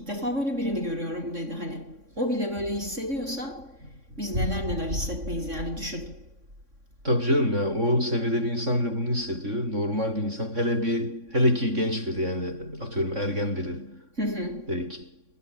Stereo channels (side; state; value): left; late; 3.6 ms